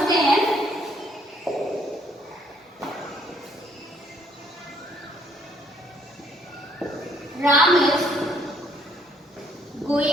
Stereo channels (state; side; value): normal; both; correlation 0.66